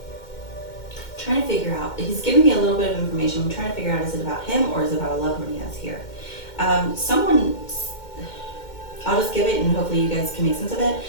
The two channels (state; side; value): late; right; 2.1 ms